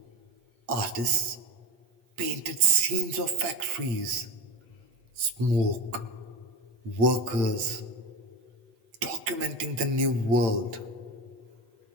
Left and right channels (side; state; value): left; late; 8.3 ms